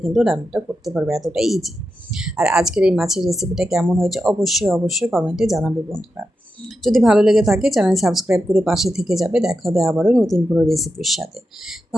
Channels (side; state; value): both; normal; correlation 0.88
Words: কিন্তু রান্নাটা করতে পারবে, এতটাই ইজি। আর আজকের এই মাছের রেসিপিটা কেমন হয়েছে অবশ্যই অবশ্যই কমেন্টে জানাবে বন্ধুরা। যদি ভালো লেগে থাকে চ্যানেল সাবস্ক্রাইব করে পাশে থেকে যাবে। দেখা হবে আবারও নতুন কোনো রেসিপির সাথে।